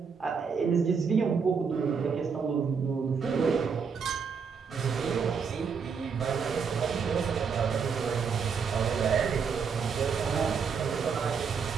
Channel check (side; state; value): left; quieter; 6.0 dB